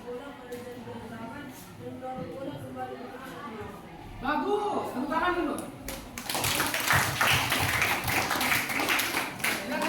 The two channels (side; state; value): both; identical; correlation 1.00